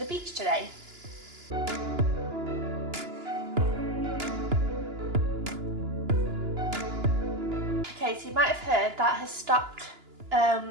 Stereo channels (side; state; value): left; late; 2.9 ms